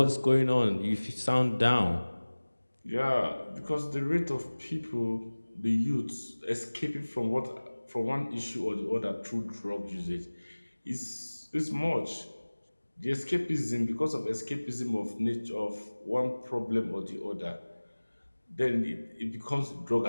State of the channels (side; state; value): both; inverted; correlation -1.00